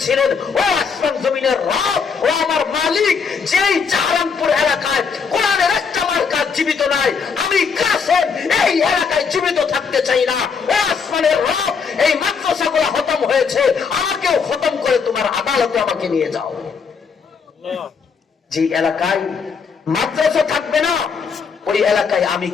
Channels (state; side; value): quieter; right; 5.7 dB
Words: ও আসমান জমিনের রব, ও আমার মালিক, যেই জাহারানপুর এলাকায় কোরআনের একটা মার্কা জীবিত নাই, আমি কাসেম এই এলাকায় জীবিত থাকতে চাই না। ও আসমানের রব, এই মাদ্রাসাগুলো খতম হয়েছে, আমাকেও খতম করে তোমার আদালতে আমাকে নিয়ে যাও। যে এলাকায় মাদ্রাসা থাকবে না, ওই এলাকায় আমি